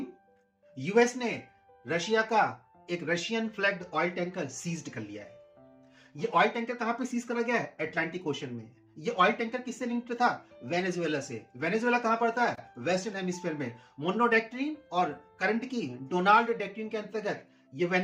यूएस ने रशिया का एक Russian flagged oil tanker seized कर लिया है। ये ऑयल टैंकर कहां पे सीज करा गया है? अटलांटिक ओशन में। ये ऑयल टैंकर किससे लिंक्ड था? वेनेजुएला से। वेनेजुएला कहां पड़ता है? वेस्टर्न हेमिस्फीयर में। मोनो डॉक्ट्रिन और करंट की डोनाल्ड डॉक्ट्रिन के अंतर्गत ये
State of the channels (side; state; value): both; identical; correlation 1.00